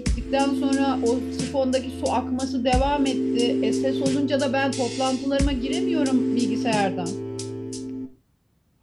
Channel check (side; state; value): both; identical; correlation 1.00